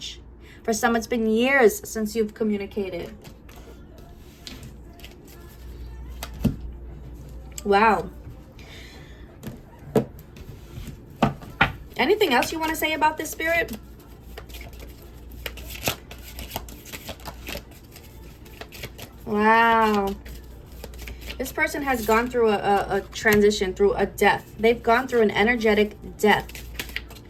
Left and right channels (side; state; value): both; identical; correlation 1.00